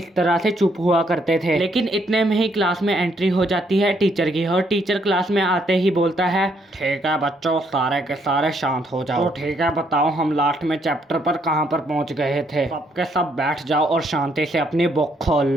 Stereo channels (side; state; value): both; normal; correlation 0.71